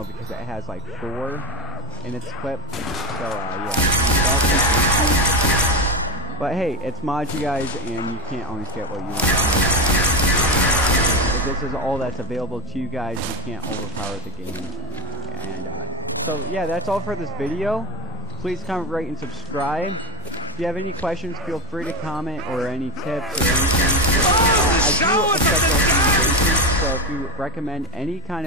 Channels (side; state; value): both; normal; correlation 0.14